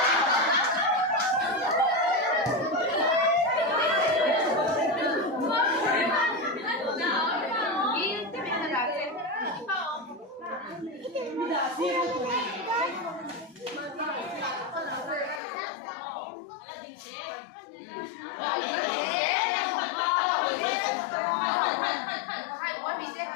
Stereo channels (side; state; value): right; drops out; at 15.4 s